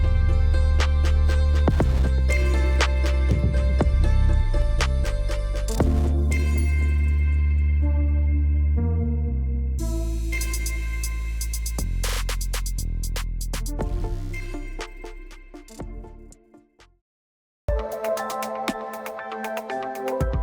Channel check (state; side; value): identical; both; correlation 1.00